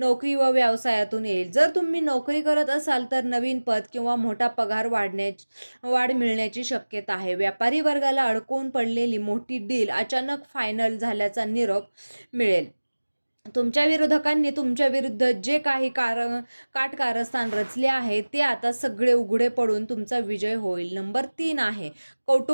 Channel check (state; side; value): inverted; both; correlation -1.00